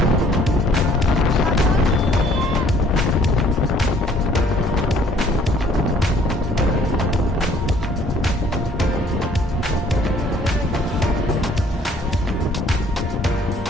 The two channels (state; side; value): normal; both; correlation 0.59